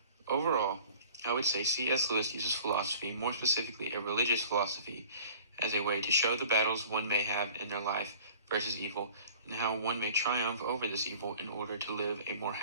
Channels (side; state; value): both; inverted; correlation -0.47